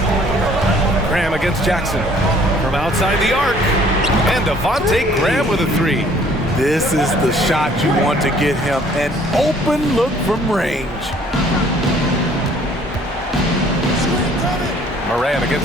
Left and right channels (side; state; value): both; normal; correlation 0.58